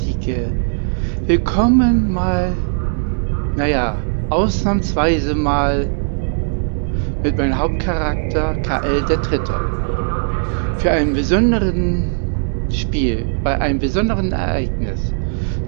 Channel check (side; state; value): left; silent; digital silence